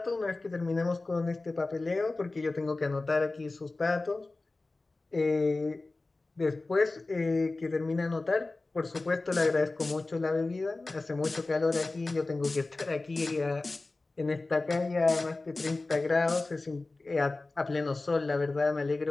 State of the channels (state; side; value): quieter; right; 3.3 dB